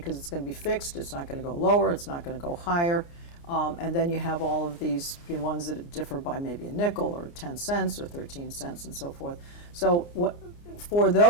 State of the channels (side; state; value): right; late; 29 ms